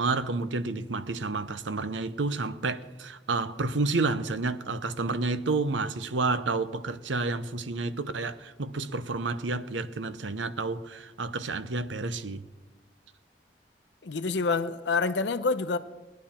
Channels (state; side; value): normal; both; correlation 0.27